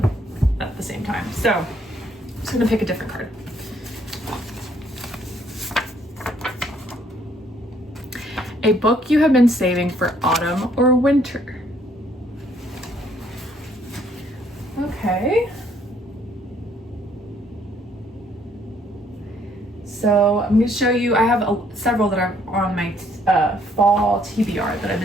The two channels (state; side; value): normal; both; correlation 0.66